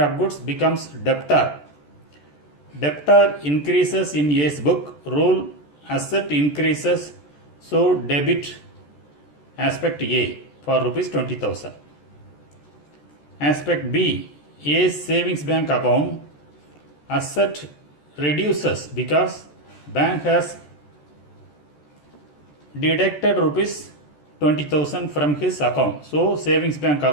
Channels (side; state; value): right; late; 14 ms